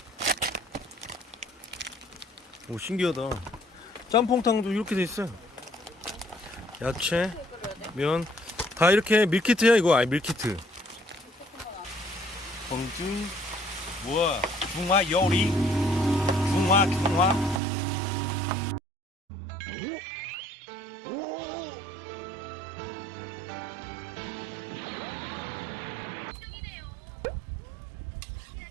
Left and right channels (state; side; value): drops out; left; at 17.6 s